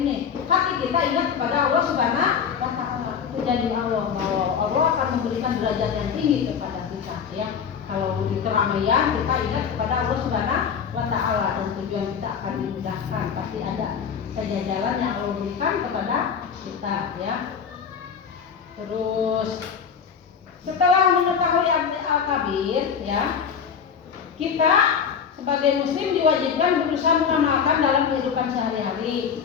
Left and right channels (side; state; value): right; quieter; 7.0 dB